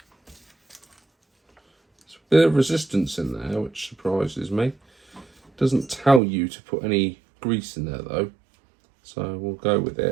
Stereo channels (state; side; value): drops out; left; at 6.2 s